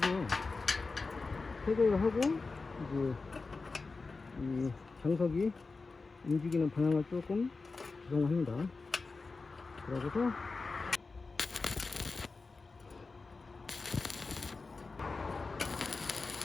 태그를 하고 이제 이 장석이 움직이는 방향을 조금 조정합니다. 그러고서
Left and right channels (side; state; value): right; quieter; 4.0 dB